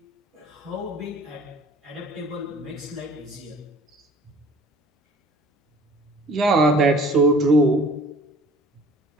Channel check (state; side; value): normal; both; correlation 0.50